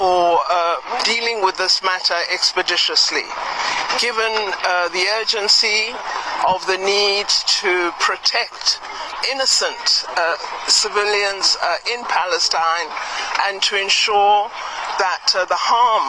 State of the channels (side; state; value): both; identical; correlation 1.00